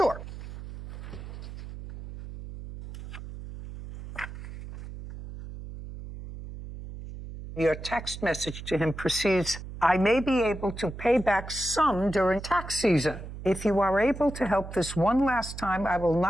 Your text message to him proceeds, I may be able to pay back some during tax season. If you are able to help this one last time, I will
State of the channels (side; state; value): right; noise; hum, 11 dB below the sound